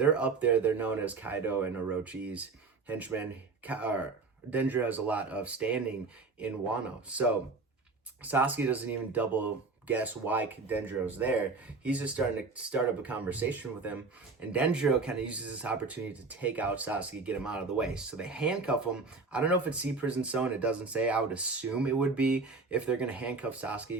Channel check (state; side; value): quieter; left; 4.1 dB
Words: up there. They're known as Kaido and Orochi's henchmen. Denjiro has a lot of standing in Wano. So Sasuke doesn't even double guess why Denjiro's there. He's just starting to start up a conversation with him, and Denjiro kind of uses this opportunity to take out Sasuke, get him out of the way. So they handcuff him. I don't know if it's Sea Prison Stone. It doesn't say. I would assume it would be. If they're going to handcuff